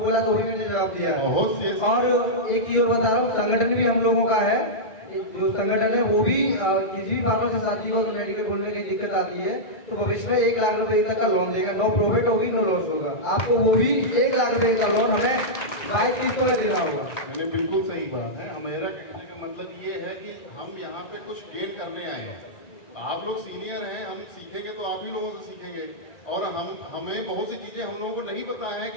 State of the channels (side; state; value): right; late; 1.9 ms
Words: तो वही मैंने जवाब दिया है। और एक चीज बता रहा हूँ, संगठन भी हम लोगों का है, जो संगठन है वो भी किसी भी फार्मेसी साथी को मेडिकल खोलने की दिक्कत आती है तो भविष्य में 1 लाख रुपए तक का लोन देगा, नो प्रॉफिट होगी नो लॉस होगा, आपको वो भी 1 लाख रुपए का लोन हमें 22 किस्तों में देना होगा। मैंने बिल्कुल सही बात है। मेरा कहने का मतलब ये है कि हम यहाँ पे कुछ गेन करने आए हैं। आप लोग सीनियर हैं, हम सीखेंगे तो आप ही लोगों से सीखेंगे, और हमें बहुत सी चीजें हम लोगों को नहीं पता है